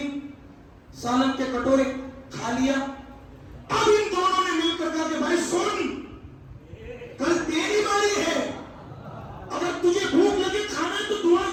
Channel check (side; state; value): both; identical; correlation 1.00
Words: سالن کے کٹورے کھا لیا۔ اب ان دونوں نے مل کر کہا کہ بھائی سن، کل تیری باری ہے، اگر تجھے بھوک لگے کھانا ہے تو دعا